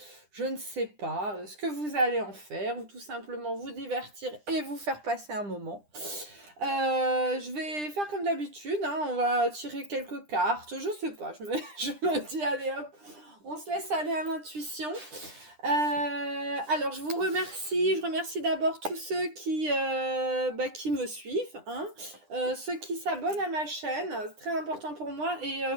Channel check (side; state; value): left; late; 9.9 ms